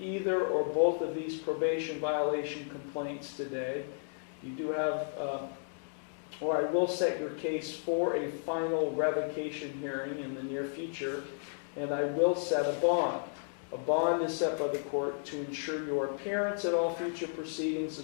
or both of these probation violation complaints today, you do have, or I will set your case for a final revocation hearing in the near future, and I will set a bond. A bond is set by the court to ensure your appearance at all future proceedings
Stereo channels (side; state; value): right; silent; digital silence